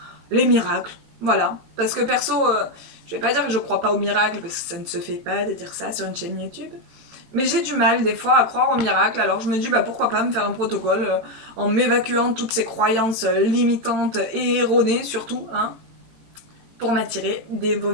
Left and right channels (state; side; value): late; left; 18 ms